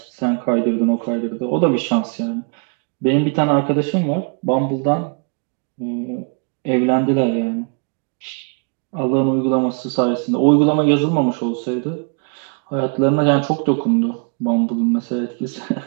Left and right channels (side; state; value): left; quieter; 38.8 dB